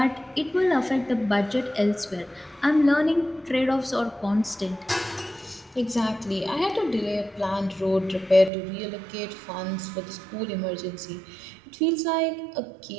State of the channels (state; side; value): drops out; left; at 8.5 s